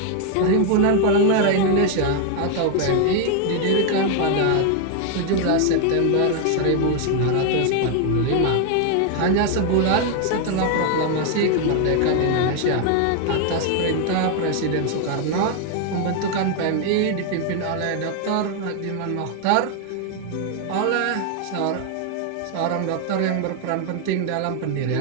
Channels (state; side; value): different; both; correlation 0.00